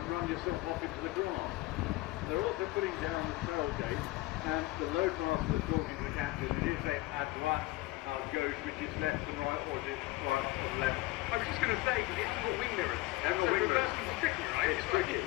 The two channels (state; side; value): quieter; right; 19.5 dB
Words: run yourself off into the grass. They're also putting down the tailgate, and the load master is talking to the captain, and he'll say, à droite, à gauche, which is left and right, or is it right or left? I was just going to say, because it hasn't got wing mirrors. So reversing's tricky, right? It's tricky.